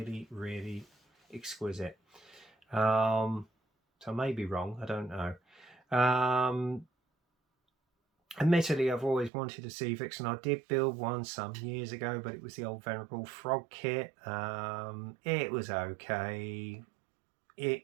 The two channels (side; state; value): left; drops out; at 9.3 s